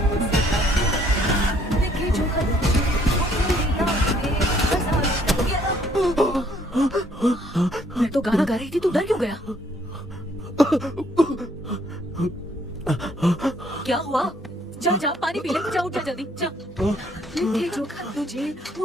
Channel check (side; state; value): both; normal; correlation 0.65